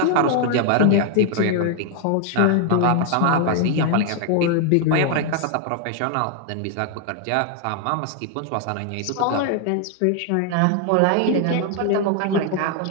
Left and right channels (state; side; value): different; both; correlation 0.00